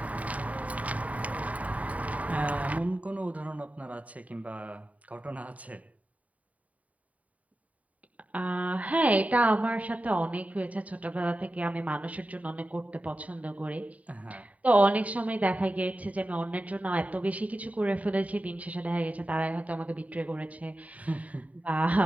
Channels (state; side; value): late; left; 0.069 ms